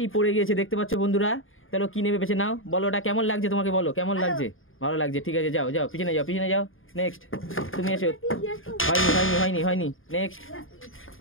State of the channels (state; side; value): late; right; 0.59 ms